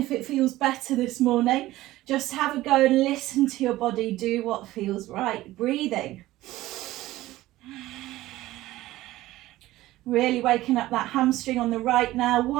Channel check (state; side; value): quieter; left; 16.5 dB